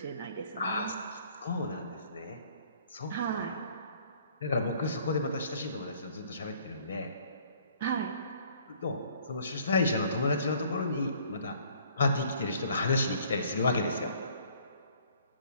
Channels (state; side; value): inverted; both; correlation -0.58